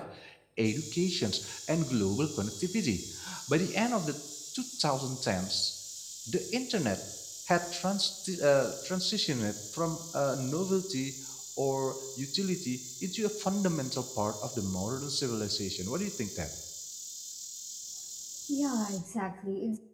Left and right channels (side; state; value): both; identical; correlation 1.00